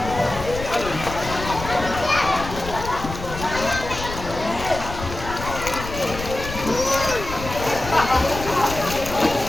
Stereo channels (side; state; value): left; noise; rumble, 9 dB below the sound